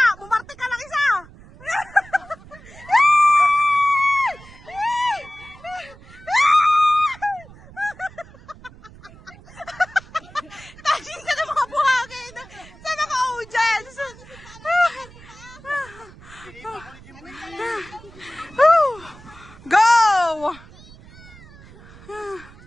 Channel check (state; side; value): noise; right; rumble, 21 dB below the sound